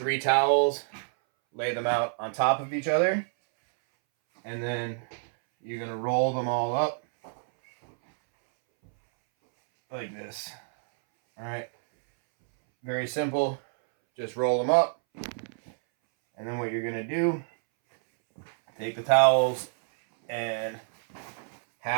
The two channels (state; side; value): silent; left; 60 dB below the other